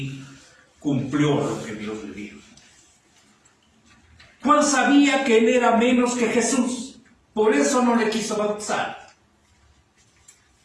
cumplió lo que Dios le dijo. Juan sabía que él era menos que Jesús, por eso no le quiso bautizar.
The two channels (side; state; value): both; identical; correlation 1.00